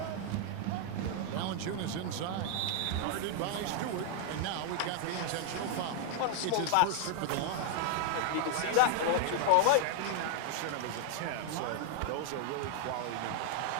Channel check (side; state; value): both; different; correlation 0.00